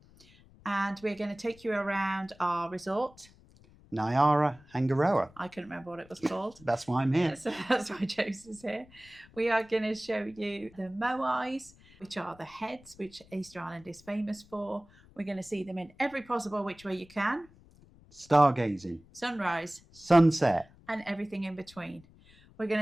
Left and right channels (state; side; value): noise; left; rumble, 26 dB below the sound